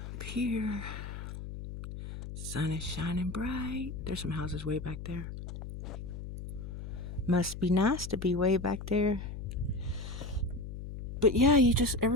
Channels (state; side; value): noise; left; hum, 9 dB below the sound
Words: here, sun is shining bright. There's some houses way back there. Must be nice to be way back there. But yeah, you just,